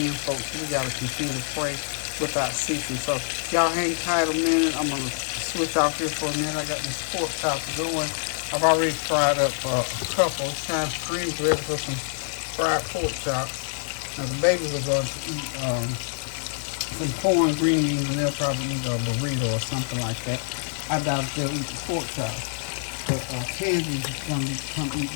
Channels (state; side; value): silent; right; digital silence